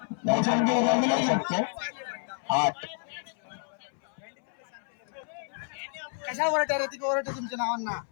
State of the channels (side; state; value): right; silent; 58 dB below the other